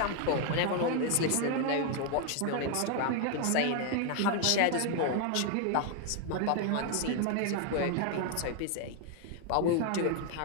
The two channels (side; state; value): both; different; correlation 0.01